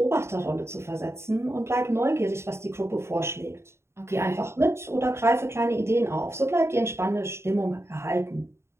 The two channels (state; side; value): late; left; 0.13 ms